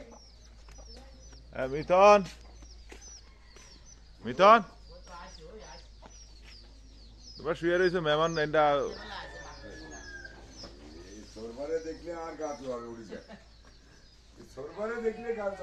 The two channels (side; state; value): both; identical; correlation 1.00